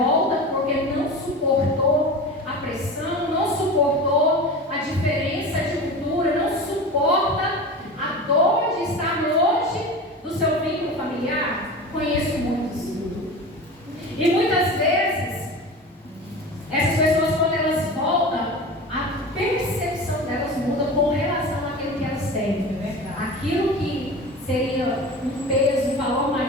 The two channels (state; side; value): normal; both; correlation 0.32